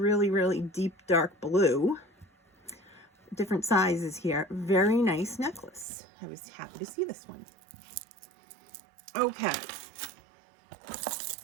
really deep dark blue. Different sizes here. Very nice necklace. I was happy to see this one. Okay.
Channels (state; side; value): drops out; left; at 5.9 s